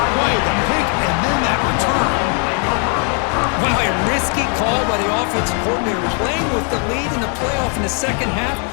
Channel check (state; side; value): quieter; right; 39.8 dB